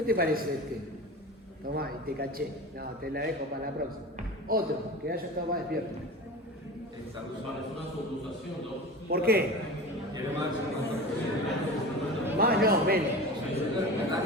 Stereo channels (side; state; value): both; normal; correlation 0.32